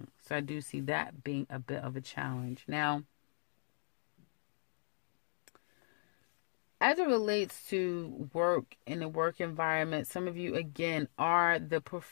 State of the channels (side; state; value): right; silent; digital silence